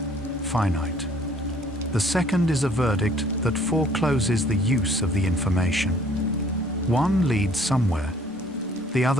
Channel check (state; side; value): normal; both; correlation 0.58